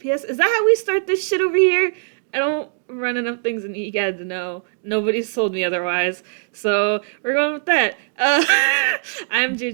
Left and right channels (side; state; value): left; silent; digital silence